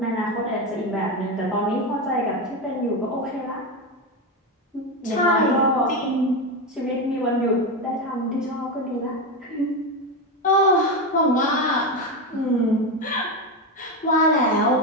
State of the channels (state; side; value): normal; both; correlation 0.14